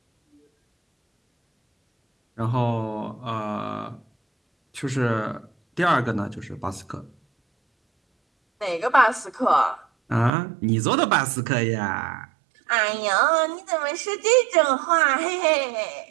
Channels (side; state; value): left; drops out; at 10.3 s